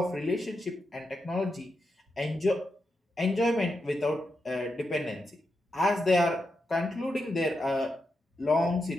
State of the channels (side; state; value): both; normal; correlation 0.86